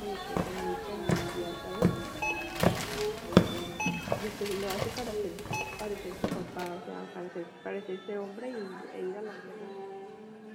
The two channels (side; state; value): both; identical; correlation 1.00